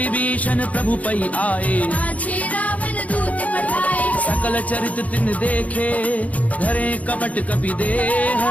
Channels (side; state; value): right; late; 0.070 ms